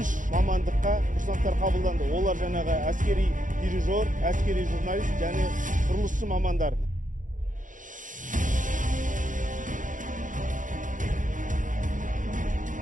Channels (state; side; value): late; left; 0.38 ms